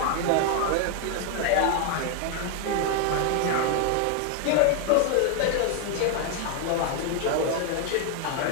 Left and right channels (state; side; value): different; both; correlation 0.00